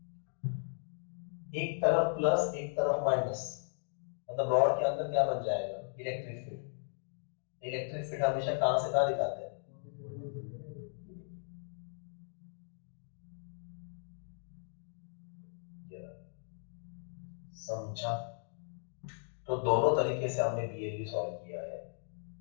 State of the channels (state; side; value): silent; right; digital silence